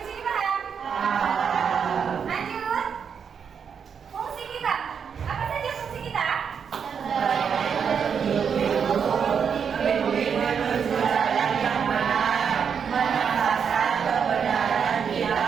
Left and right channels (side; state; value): left; quieter; 6.9 dB